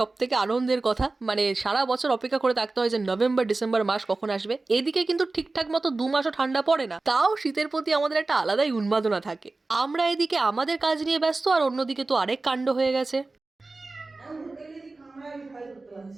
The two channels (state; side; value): quieter; left; 3.4 dB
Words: থেকে আনন্দের কথা। মানে সারা বছর অপেক্ষা করে থাকতে হয় যে নভেম্বর ডিসেম্বর মাস কখন আসবে। এদিকে কিন্তু ঠিকঠাক মতো 2 মাসও ঠান্ডা পড়ে না, তাও শীতের প্রতি আমাদের একটা আলাদাই উন্মাদনা থাকে। আমরা এদিকে আমাদের কাজ নিয়ে ব্যস্ত, আর অন্যদিকে তো আরেক কাণ্ড হয়ে গেছে।